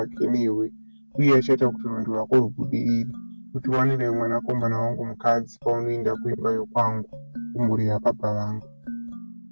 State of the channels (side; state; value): both; inverted; correlation -1.00